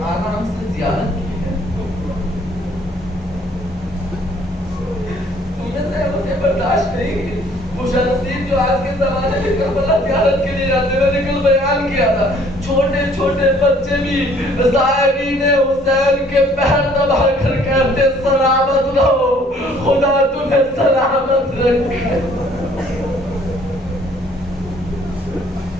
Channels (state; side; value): normal; both; correlation 0.59